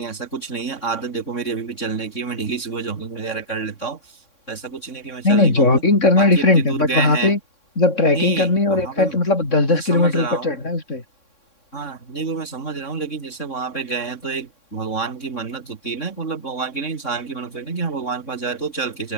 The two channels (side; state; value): right; late; 3.6 ms